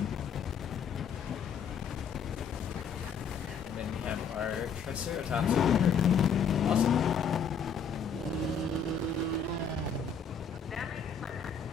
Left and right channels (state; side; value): quieter; right; 6.1 dB